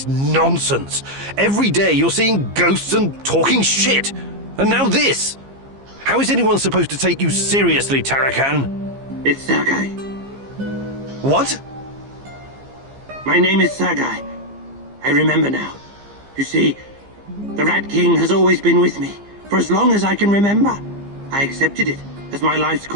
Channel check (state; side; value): late; left; 15 ms